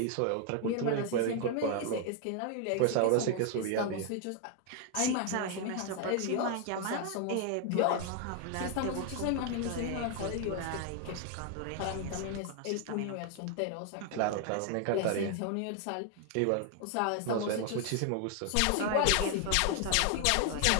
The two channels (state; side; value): different; both; correlation 0.00